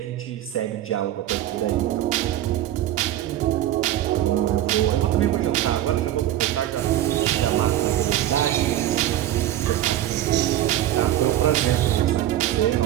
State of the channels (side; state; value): left; quieter; 12.9 dB